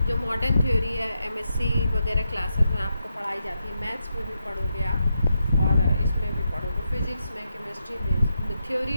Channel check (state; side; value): inverted; both; correlation -0.85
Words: जो मॉडर्न थ्योरी है, एमएससी वगैरह क्लासेस में आपको पढ़ाई जाती है, मैथ्स में भी पढ़ोगे आप और इसमें भी पढ़ोगे, फिजिक्स में, केमिस्ट्री में, थ्योरी